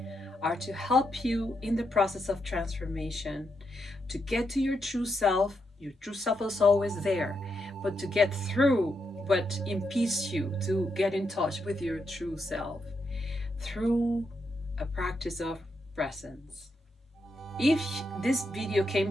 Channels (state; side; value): normal; both; correlation 0.82